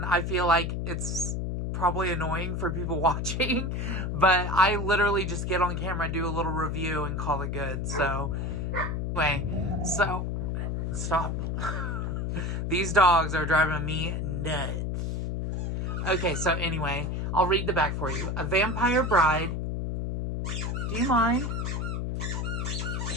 I feel like it's probably annoying for people watching, but I literally just get on camera, do a little review, and call it good. So, anyway, so, stop. These dogs are driving me nuts. Okay, so anyway, I'll read the back for you. A vampire bride. Do you mind?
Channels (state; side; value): noise; left; hum, 1 dB below the sound